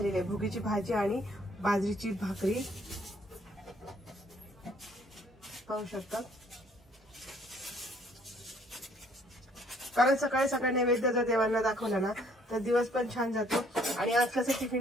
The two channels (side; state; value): both; normal; correlation 0.62